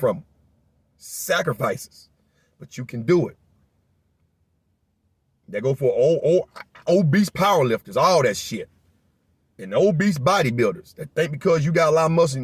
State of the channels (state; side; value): identical; both; correlation 1.00